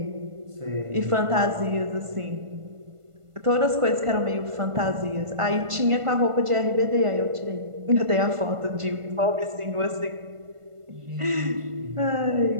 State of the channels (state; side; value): late; left; 1.5 ms